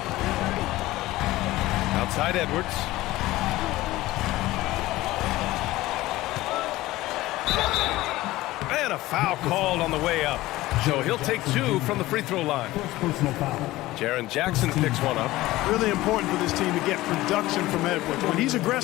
Outside Edwards. And a foul called on the way up. So he'll take two from the free throw line. Jaren Jackson picks one up. Really important for this team to get production from Edwards. When he's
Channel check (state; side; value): quieter; right; 17.6 dB